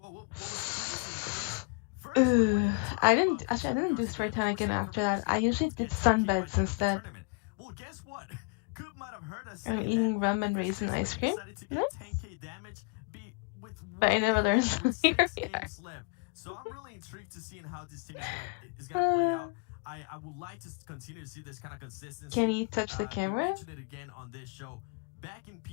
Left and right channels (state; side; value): quieter; right; 34.2 dB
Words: Ugh, I didn't do spray tan again after that. I usually did sunbeds instead. I'm eating rum and raisin ice cream. Nice. But I never learned. Here we are. So I'm really intrigued to see how this team is going to play out. I would like to continue to see this kind of consistency. Can you touch the You camera? mentioned it again on this show. Back in